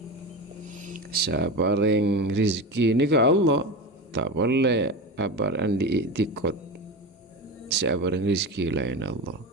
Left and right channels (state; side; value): normal; both; correlation 0.24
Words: Siapa yang rizki nika Allah. Tak boleh apa yang diiktikot siapa yang rizki lain Allah.